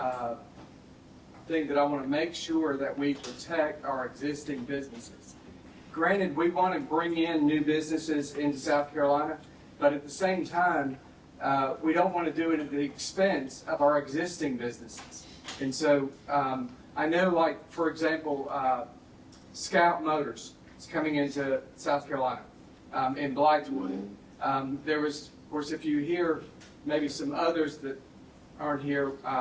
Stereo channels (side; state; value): both; identical; correlation 1.00